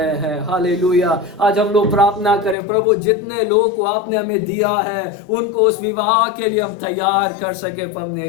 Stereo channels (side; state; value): right; drops out; at 2.6 s